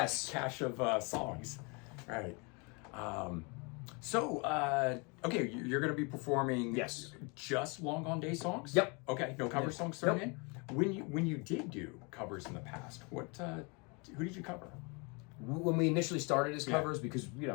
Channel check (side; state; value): right; quieter; 30.9 dB